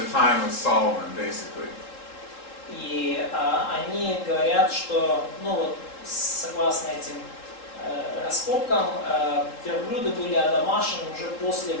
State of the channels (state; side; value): late; right; 3.7 ms